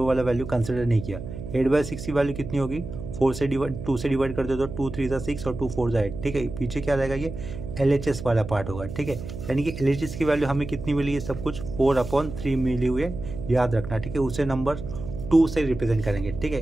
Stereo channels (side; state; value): right; noise; hum, 9 dB below the sound